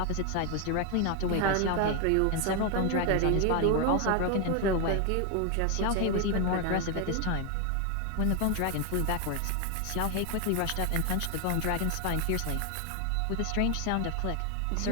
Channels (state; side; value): different; both; correlation 0.01